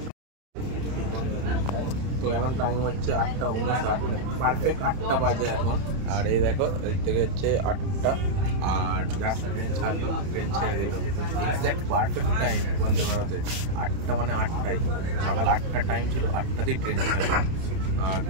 তো এখন টাইম হচ্ছে 8:59, মানে পারফেক্ট 8টা বাজে এখন। আর এই দেখো এদিক থেকে হচ্ছে 8টা, আর জাস্ট ট্রেন ছাড়লো, ট্রেন ছেড়ে দিল। এক্স্যাক্ট পারফেক্ট টাইম বন্দে ভারতের 8টা, মানে 8টাই। সকাল 8টার টাইম ছিল, 8টাতেই ট্রেন ছাড়লো। আর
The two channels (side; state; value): left; late; 31 ms